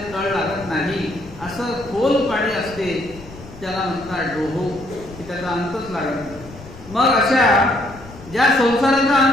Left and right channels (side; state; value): left; noise; rumble, 18 dB below the sound